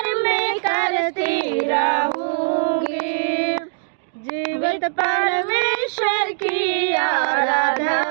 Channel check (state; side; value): silent; left; digital silence